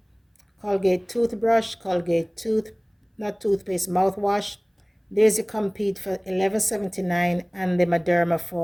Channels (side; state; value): both; identical; correlation 1.00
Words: Colgate toothbrush, Colgate not toothpaste, mouthwash. There's the Compeed for $11.79 and the Mederma